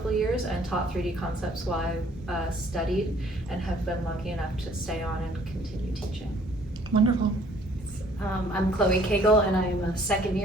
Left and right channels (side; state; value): both; normal; correlation 0.59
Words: of years and taught 3D concepts while I studied, and have been lucky enough to stay on and continue teaching. Wonderful. I'm Koegel, and I'm a second